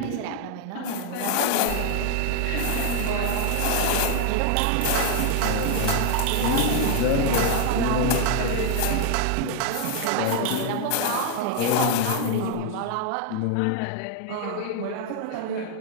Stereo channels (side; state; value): both; different; correlation 0.00